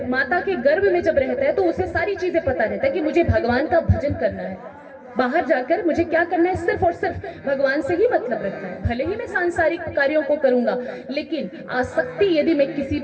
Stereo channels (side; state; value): both; identical; correlation 1.00